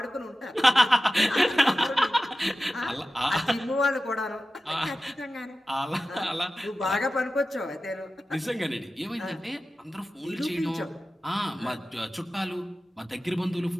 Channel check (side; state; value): both; normal; correlation 0.95